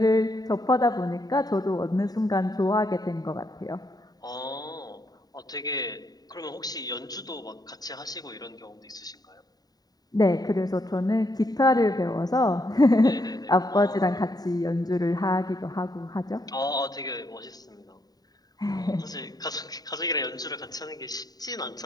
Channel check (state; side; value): late; right; 0.18 ms